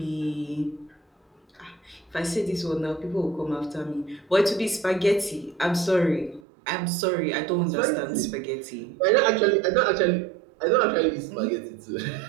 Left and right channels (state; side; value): drops out; left; at 6.4 s